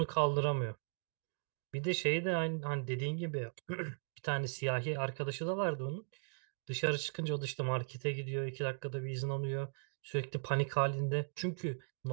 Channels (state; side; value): silent; left; digital silence